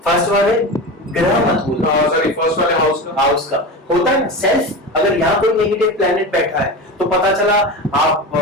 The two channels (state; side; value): normal; both; correlation 0.26